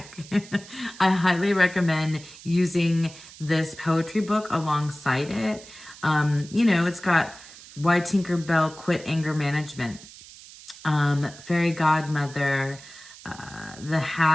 I highly recommend using this poetry book alongside it. It's got Why Tinker Bell Quit Anger Management, Fairy Godmother, The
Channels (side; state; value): right; noise; hiss, 18 dB below the sound